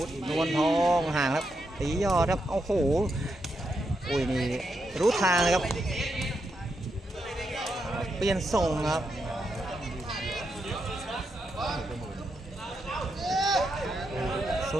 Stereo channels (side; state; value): both; normal; correlation 0.83